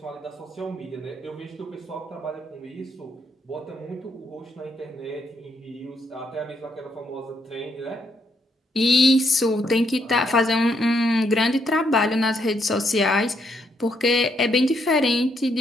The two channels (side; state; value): both; normal; correlation 0.75